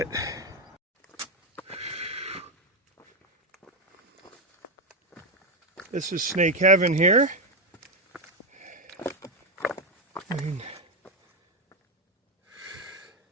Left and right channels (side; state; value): both; normal; correlation 0.06